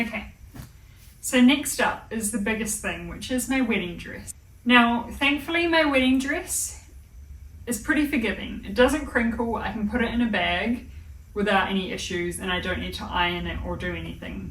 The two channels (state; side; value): identical; both; correlation 1.00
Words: so next up is the biggest thing, which is my wedding dress. Now, thankfully my wedding dress is pretty forgiving. It doesn't crinkle, I can put it in a bag without any issues, and I don't need to iron it or do anything